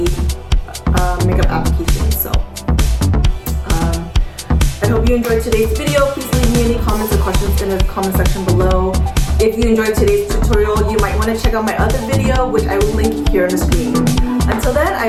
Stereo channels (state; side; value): identical; both; correlation 1.00